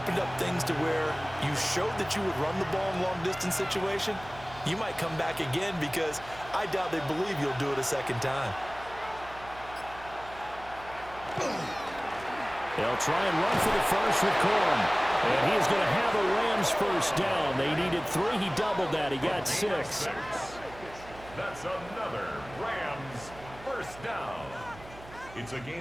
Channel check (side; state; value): right; noise; hum, 18 dB below the sound